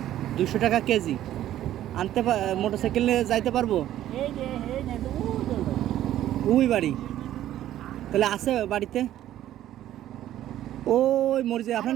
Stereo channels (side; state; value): left; quieter; 12.7 dB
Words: 200 টাকা কেজি। আনতে মোটরসাইকেল নিয়ে যাইতে পারবো? এই যে এই যে ওই বাড়ি, তাহলে আছে বাড়িতে? ওই মরিচে।